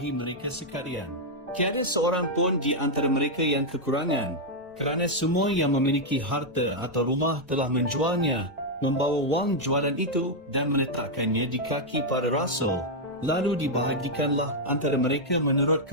mereka sekalian. Tiada seorang pun di antara mereka yang kekurangan, kerana semua yang memiliki harta atau rumah telah menjualnya, membawa wang jualan itu dan meletakkannya di kaki para rasul. Lalu dibahagikanlah antara mereka menurut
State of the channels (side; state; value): both; normal; correlation -0.02